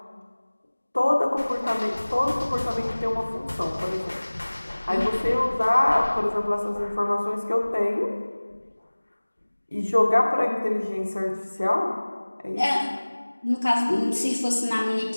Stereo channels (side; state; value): both; inverted; correlation -1.00